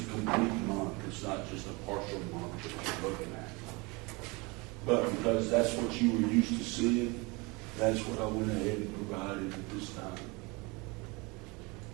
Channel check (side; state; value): left; quieter; 26.8 dB